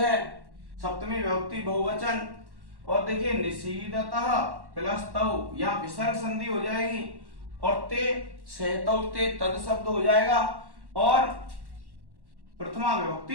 सप्तमी विभक्ति बहुवचन। और देखिए निषीदतः प्लस तौ, यहाँ विसर्ग संधि हो जाएगी और ते सहतौ ते तद शब्द हो जाएगा और प्रथमा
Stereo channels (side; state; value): left; late; 1.1 ms